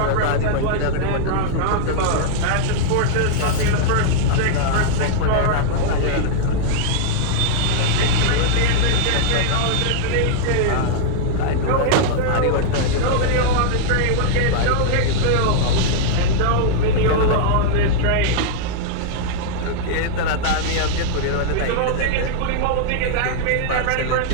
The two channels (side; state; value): both; different; correlation -0.01